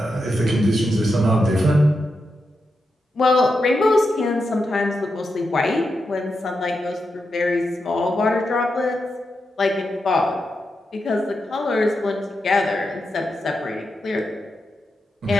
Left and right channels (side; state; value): both; normal; correlation 0.87